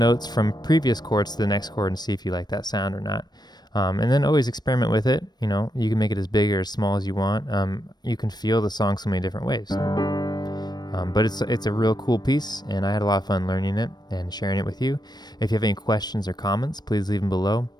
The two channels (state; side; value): late; right; 0.20 ms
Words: from previous chords to the next chord and see if you like that sound or not. And then always experiment with it. You can make it as big or as small as you want. You can feel the song so many different ways. But it's a real cool piece, and I had a lot of fun learning it and sharing it with you. If you have any questions or comments, please leave them below.